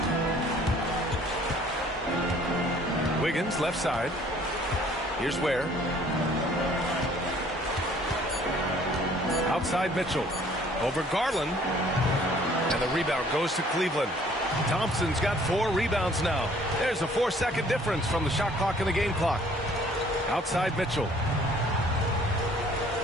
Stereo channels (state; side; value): normal; both; correlation 0.57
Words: Wiggins left side. Here's Ware. Outside Mitchell. Over Garland. And the rebound goes to Cleveland. Thompson's got 4 rebounds now. There's a 4-second difference from the shot clock and the game clock. Outside Mitchell.